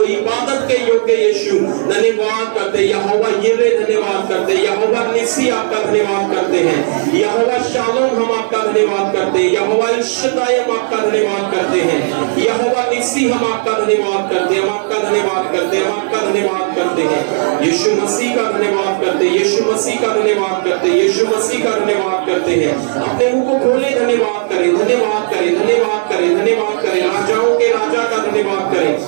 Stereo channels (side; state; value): left; silent; 69 dB below the other